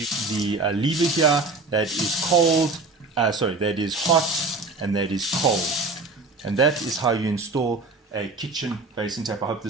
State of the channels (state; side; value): quieter; left; 3.6 dB